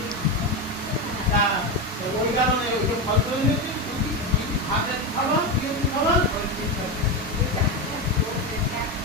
ওই কারণে ওই ফল করে নিয়েছি, হাতে খাবা, খাবা,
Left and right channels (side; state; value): both; normal; correlation 0.13